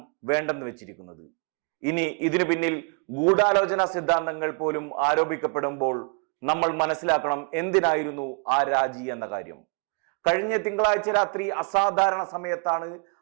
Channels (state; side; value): quieter; left; 35.5 dB